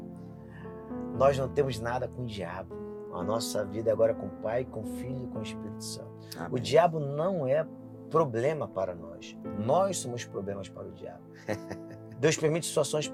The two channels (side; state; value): both; identical; correlation 1.00